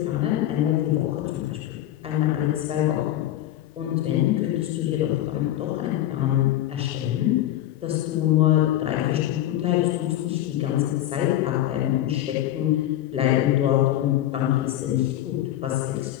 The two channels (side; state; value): right; quieter; 13.3 dB